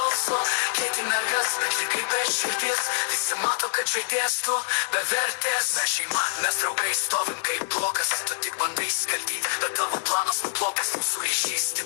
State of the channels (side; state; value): right; silent; digital silence